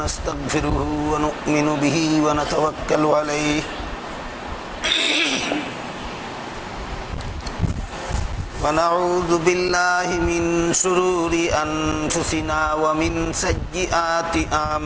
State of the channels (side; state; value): both; identical; correlation 1.00